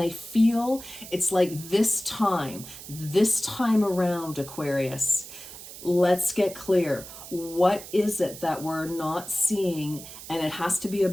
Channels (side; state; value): right; noise; hiss, 14 dB below the sound